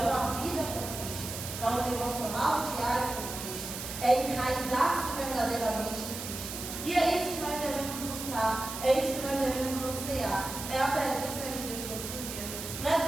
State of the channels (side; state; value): right; noise; hiss, 8 dB below the sound